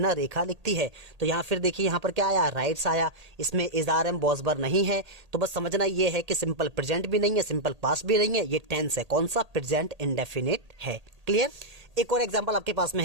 रेखा लिखती है। तो यहाँ फिर देखिए यहाँ पर क्या आया, राइट्स आया, इसमें इजारम बॉसबर नहीं है। तो बस समझना ये है कि सिंपल प्रेजेंट भी नहीं है, सिंपल पास्ट भी नहीं है, ये टेंस है। कौन सा, प्रेजेंट इंडेफिनिट है। क्लियर। एक और एग्जाम्पल आपके पास में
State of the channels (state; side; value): late; left; 1.8 ms